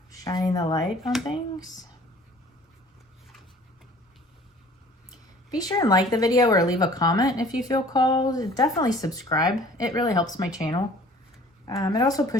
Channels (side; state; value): both; normal; correlation 0.50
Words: shining the light on things. Be sure and like the video or leave a comment if you feel called. Definitely subscribe. It really helps my channel. It also